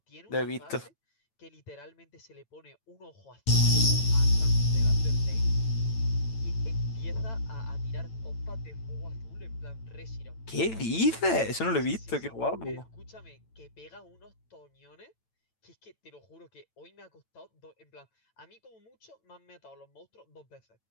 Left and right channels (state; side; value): late; right; 9.0 ms